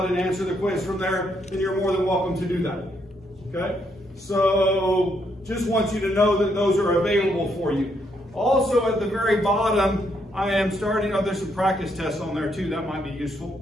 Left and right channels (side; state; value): both; normal; correlation 0.75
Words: and answer the quiz from there, then you're more than welcome to do that. Okay? So just want you to know that those are available for you. Also at the very bottom, I am starting, there's some practice tests on there too, that might be useful.